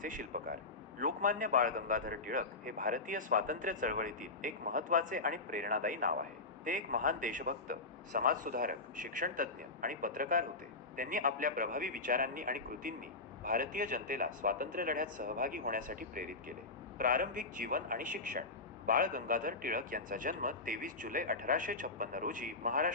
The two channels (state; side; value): quieter; right; 3.6 dB